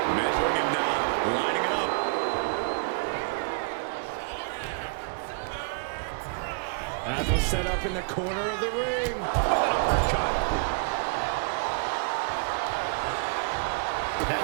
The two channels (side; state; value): left; quieter; 38.8 dB